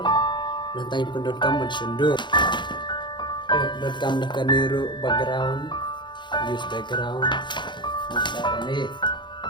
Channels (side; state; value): right; late; 0.22 ms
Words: nanti penduduk kamu sundur. Penduduk kamu dah keniru background, use background, macam ni.